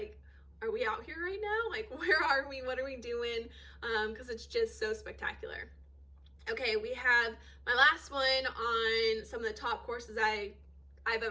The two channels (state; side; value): identical; both; correlation 1.00